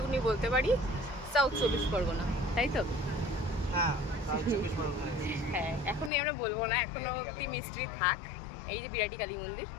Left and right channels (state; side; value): drops out; right; at 6.1 s